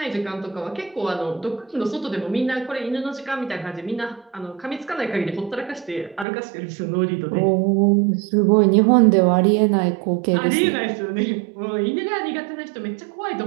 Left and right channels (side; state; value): left; drops out; at 6.2 s